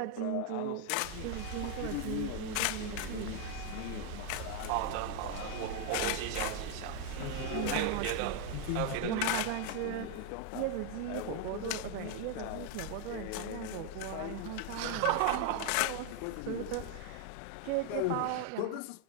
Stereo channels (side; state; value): both; different; correlation 0.01